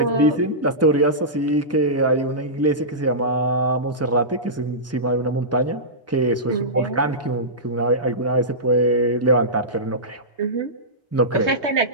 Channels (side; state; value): both; normal; correlation -0.17